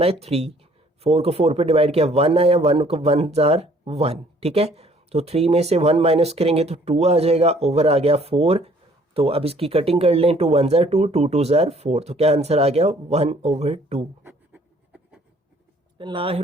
3, 4 को 4 पे डिवाइड किया 1 आया, 1 को 1 ज़ार 1, ठीक है। तो 3 में से 1 माइनस करेंगे तो 2 आ जाएगा, ओवर आ गया 4। तो अब इसकी कटिंग कर लें, 2 1 ज़ार 2 2 2 ज़ार 4, तो क्या आंसर आ गया 1/2।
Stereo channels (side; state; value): both; normal; correlation 0.59